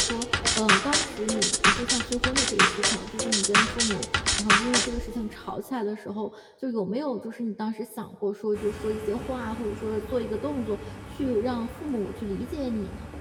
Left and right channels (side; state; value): both; identical; correlation 1.00